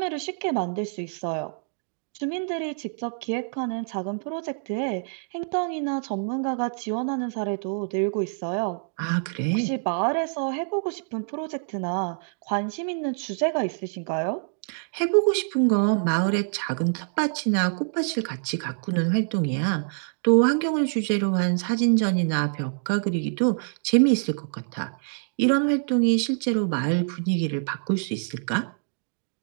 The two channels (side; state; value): left; silent; digital silence